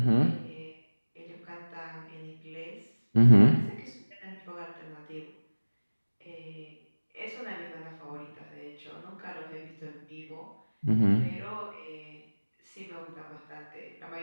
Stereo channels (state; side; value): inverted; both; correlation -1.00